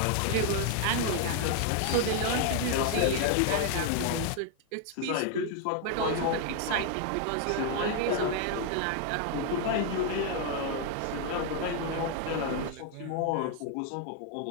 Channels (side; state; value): both; different; correlation 0.00